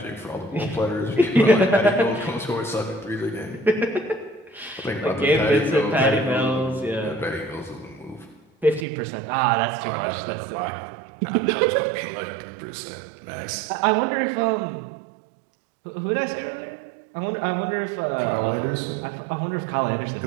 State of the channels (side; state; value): left; drops out; at 8.8 s